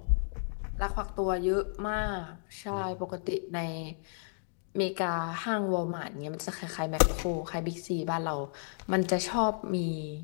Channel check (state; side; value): silent; right; digital silence